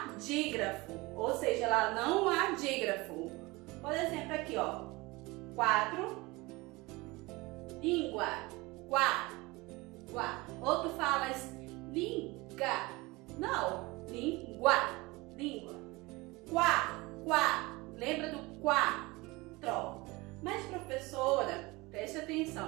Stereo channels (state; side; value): quieter; left; 23.0 dB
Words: dígrafo. Ou seja, lá não há dígrafo. Por exemplo, aqui, ó. 4. Língua. Quá. Quá. Ou tu falas linga. Não. Língua. Língua. Quá. Quá. Lembra do quatro. Mas, professora, preste